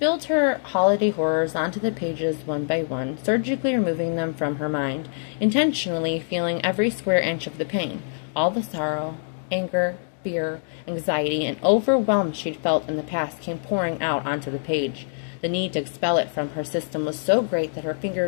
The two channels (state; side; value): silent; right; digital silence